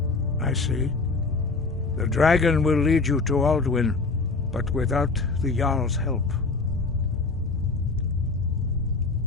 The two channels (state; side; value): quieter; right; 4.0 dB